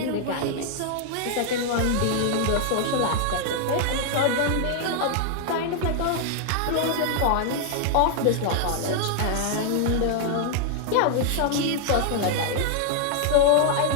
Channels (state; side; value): different; both; correlation 0.00